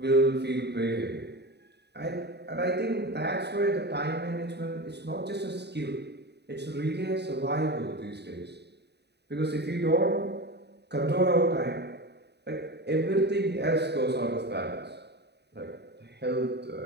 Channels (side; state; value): left; late; 0.49 ms